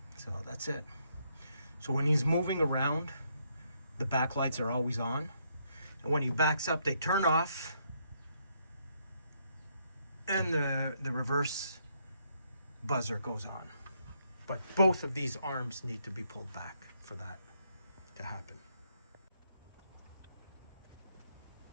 that's it. So when he's moving around, the backlights are always on. And when he backs up, they turn off. And the reverse buzzer goes on. But both of these arms need to be pulled back for that to happen.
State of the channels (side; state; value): both; inverted; correlation -0.74